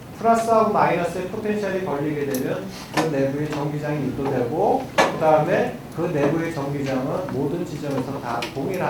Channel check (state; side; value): identical; both; correlation 1.00